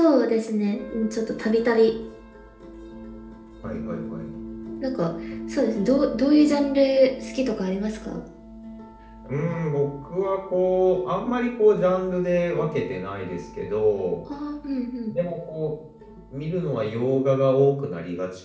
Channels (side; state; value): both; identical; correlation 1.00